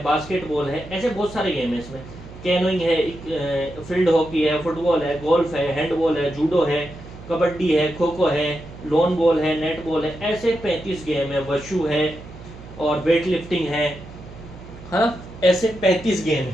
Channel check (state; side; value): noise; right; hum, 16 dB below the sound